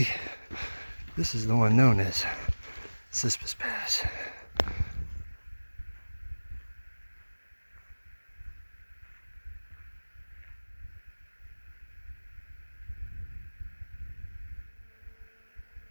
this is the one known as Cispus Pass.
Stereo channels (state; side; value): inverted; both; correlation -1.00